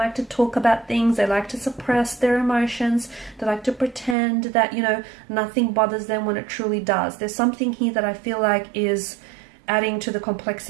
to talk about things. They like to suppress their emotions. They like to pretend that, you know, nothing bothers them when it truly does. There's something here that I feel like is adding to the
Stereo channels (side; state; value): left; drops out; at 4.2 s